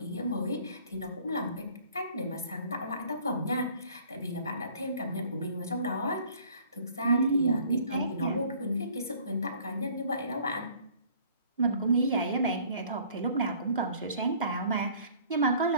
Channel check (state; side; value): inverted; both; correlation -0.54